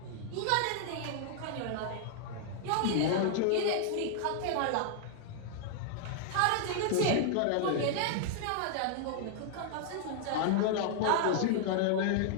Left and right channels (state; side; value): different; both; correlation -0.01